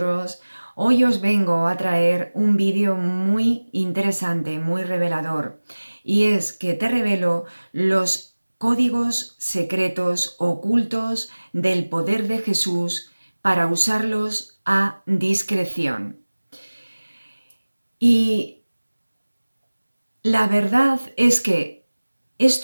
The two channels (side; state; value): both; inverted; correlation -1.00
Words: Hoy os vengo a traer un vídeo muy interesante, muy revelador. Y es que te revelo los códigos secretos ocultos del poder de Jesús para usarlos a discreción. Y la verdad es que